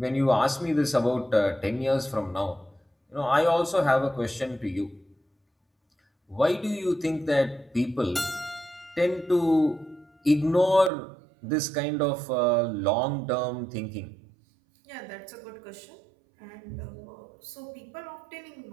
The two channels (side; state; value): left; drops out; at 10.9 s